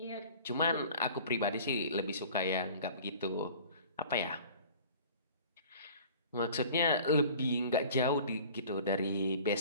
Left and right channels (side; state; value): both; inverted; correlation -0.45